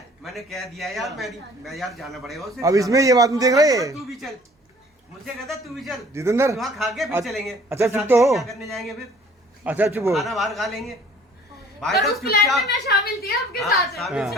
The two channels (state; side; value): normal; both; correlation 0.53